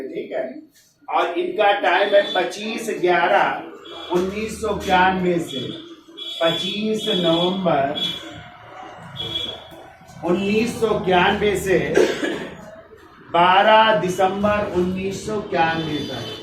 ठीक है? और इनका टाइम है 25/11/1991 से 25 नवंबर 1991 से 12 दिसंबर 1991 तक।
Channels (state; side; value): identical; both; correlation 1.00